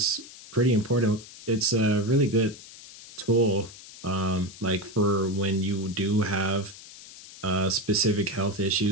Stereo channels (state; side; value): noise; left; hiss, 17 dB below the sound